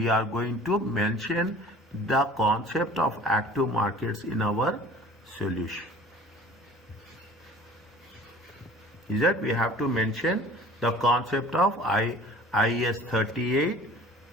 are going to mention the concept of active markets in our solution. Is that we have to mention the concept of IAS 38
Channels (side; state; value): both; normal; correlation 0.47